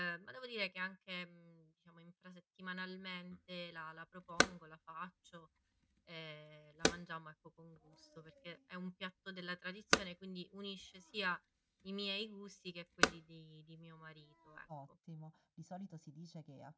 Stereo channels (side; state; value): both; identical; correlation 1.00